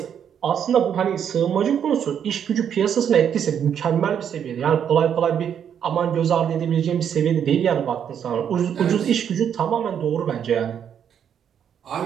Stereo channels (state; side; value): quieter; left; 8.5 dB